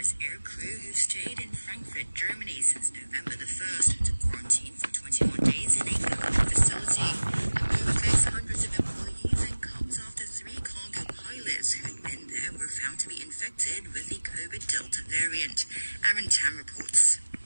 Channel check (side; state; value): both; inverted; correlation -1.00